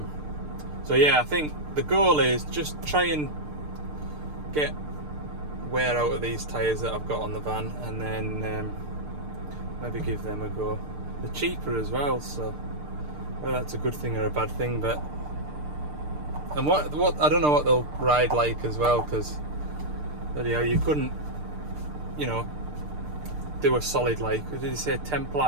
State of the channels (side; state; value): left; late; 6.7 ms